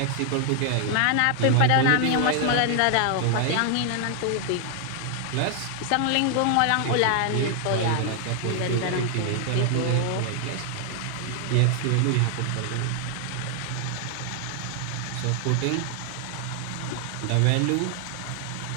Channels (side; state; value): both; different; correlation 0.00